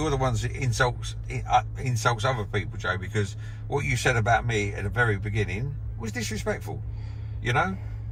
the ones that insults other people, Joe, because what you said about me at the very beginning was disrespectful. You know,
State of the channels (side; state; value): both; identical; correlation 1.00